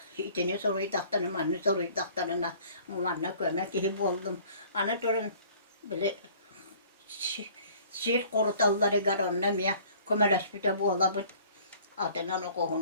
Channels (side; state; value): both; inverted; correlation -0.52